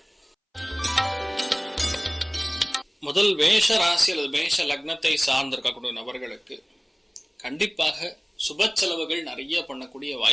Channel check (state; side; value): identical; both; correlation 1.00